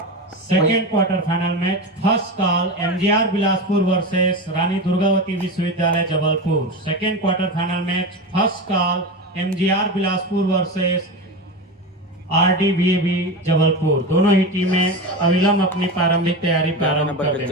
Second quarter final match first call MGR Bilaspur versus Rani Durgavati विश्वविद्यालय Jabalpur. Second quarter final match first call MGR Bilaspur versus RDVAB Jabalpur. दोनों ही टीमें अविलंब अपनी प्रारंभिक तैयारी प्रारंभ कर रहे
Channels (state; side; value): normal; both; correlation 0.22